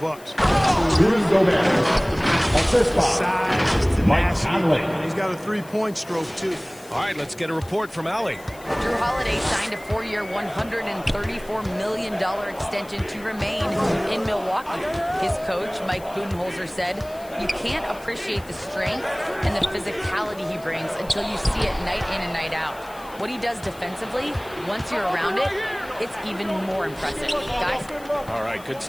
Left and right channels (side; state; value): left; noise; hiss, 22 dB below the sound